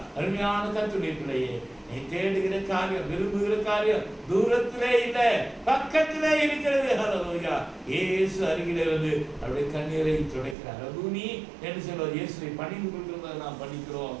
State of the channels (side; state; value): left; drops out; at 10.6 s